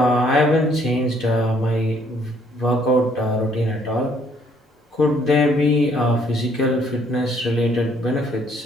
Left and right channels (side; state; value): both; normal; correlation 0.65